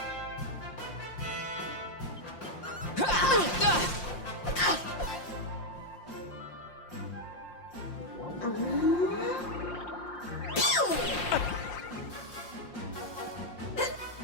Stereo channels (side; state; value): right; late; 5.7 ms